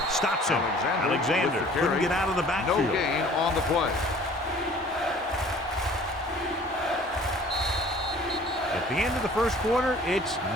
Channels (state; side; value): normal; both; correlation 0.51